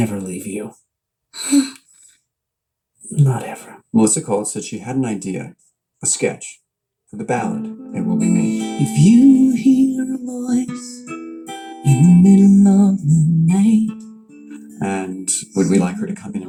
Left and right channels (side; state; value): both; identical; correlation 1.00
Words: leave you. Not ever. Melissa called, said she had an idea, a sketch, for the ballad, It Will Be Me. If you hear a voice in the middle of the night, and would we like her to come in